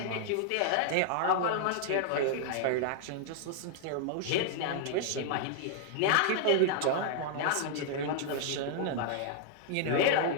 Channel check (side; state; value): both; different; correlation -0.01